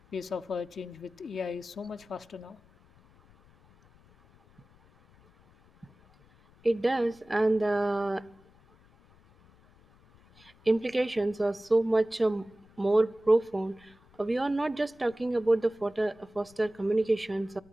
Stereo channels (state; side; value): noise; left; rumble, 28 dB below the sound